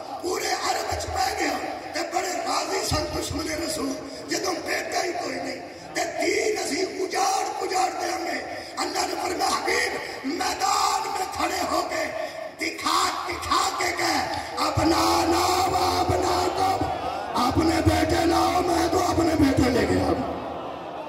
پورے عرب وچ پہ گیا تے بڑے راضی سن دشمن رسول. جدو بیٹا ہی کوئی نہیں تے دین اسی اجاڑ دیں گے. اللہ نے فرمایا حبیب میدان میں کھڑے ہو کے دکھا کے گئے اپنا نام اپنا کو اپنے بیٹے لاؤ, میں تو اپنے بیٹے لے گیا.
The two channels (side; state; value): both; identical; correlation 1.00